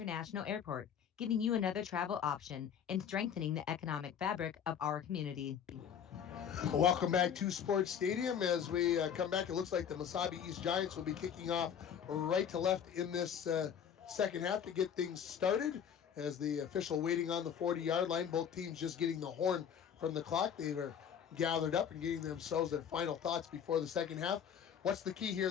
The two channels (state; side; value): quieter; right; 8.2 dB